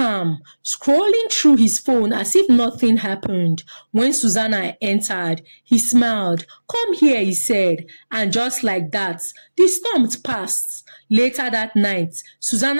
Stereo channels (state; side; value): inverted; both; correlation -1.00